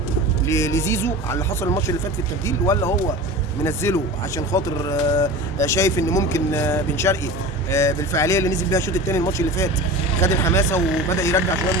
لزيزو على اللي حصل الماتش اللي فات في التبديل، ولا هو منزله عشان خاطر شايف ان ممكن بن شرقي بالفعاليه اللي نزل بيها الشوط الثاني الماتش اللي فات خد الحماسه وبدا يرجع شويه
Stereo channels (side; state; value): both; normal; correlation 0.32